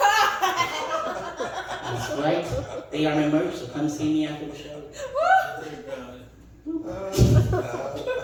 That's right. They are my merch, so come see me after the show.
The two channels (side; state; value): both; identical; correlation 1.00